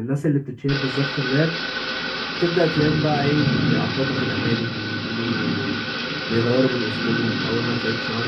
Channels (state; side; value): identical; both; correlation 1.00